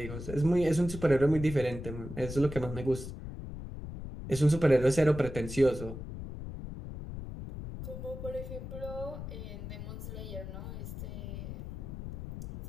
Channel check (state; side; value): noise; left; rumble, 9 dB below the sound